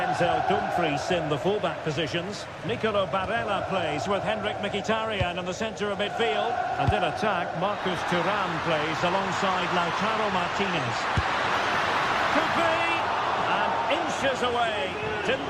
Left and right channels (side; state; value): both; identical; correlation 1.00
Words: Dumfries in the fullback positions. Nicolo Barella plays with Henrik Mkhitaryan in the centre of midfield. And in attack, Marcus Thuram plays alongside Lautaro Martinez. Could be! And inches away.